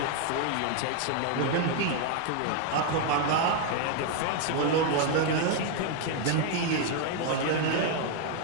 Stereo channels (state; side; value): different; both; correlation 0.00